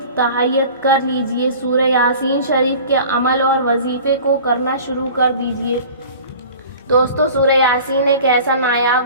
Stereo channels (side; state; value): both; inverted; correlation -0.42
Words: تہیت کر لیجئے، سورہ یاسین شریف کے عمل اور وظیفے کو کرنا شروع کر دیجئے۔ دوستو، سورہ یاسین ایک ایسا